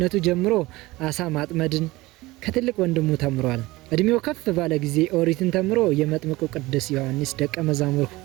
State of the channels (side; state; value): left; quieter; 20.0 dB